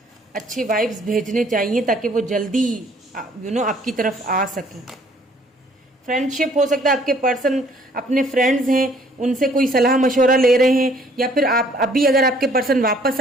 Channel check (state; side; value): normal; both; correlation 0.60